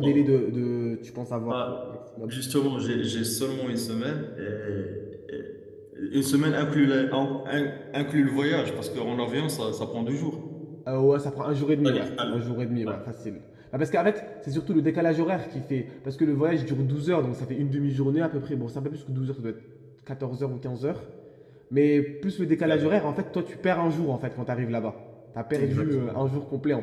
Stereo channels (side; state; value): both; identical; correlation 1.00